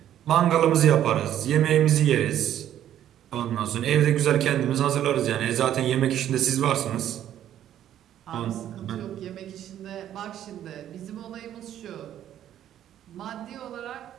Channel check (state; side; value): quieter; left; 11.2 dB